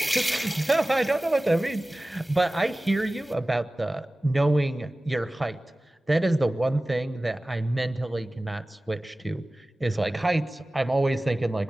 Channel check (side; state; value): both; normal; correlation 0.97